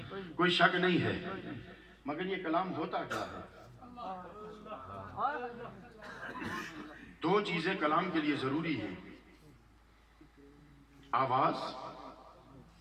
شک نہیں ہے. مگر یہ کلام ہوتا کیا ہے؟ دو چیزیں کلام کے لیے ضروری ہیں, آواز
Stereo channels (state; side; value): identical; both; correlation 1.00